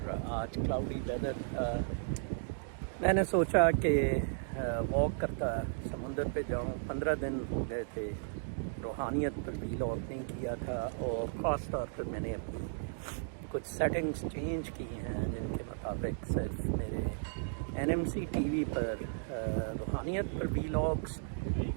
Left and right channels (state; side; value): silent; left; digital silence